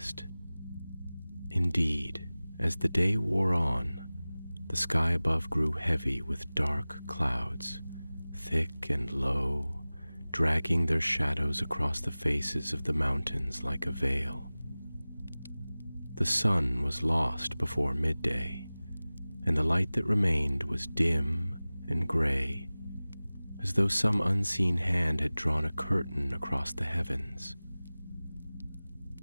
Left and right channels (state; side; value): inverted; both; correlation -0.98